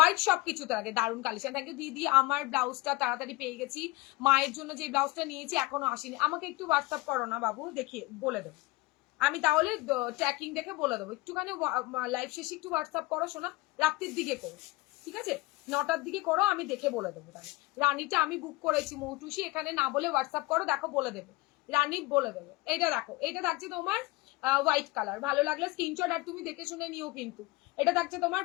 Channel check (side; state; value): right; quieter; 21.0 dB